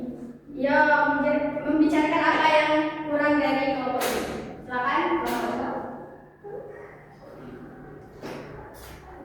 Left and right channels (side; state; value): both; identical; correlation 1.00